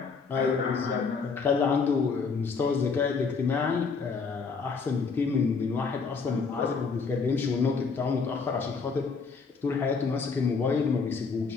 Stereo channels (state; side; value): quieter; right; 5.0 dB